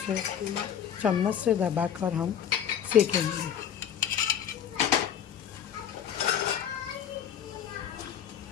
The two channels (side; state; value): right; quieter; 9.1 dB